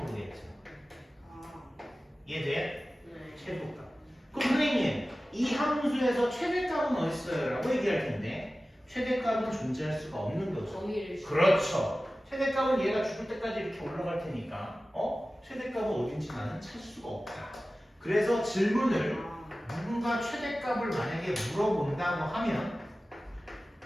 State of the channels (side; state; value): both; normal; correlation 0.96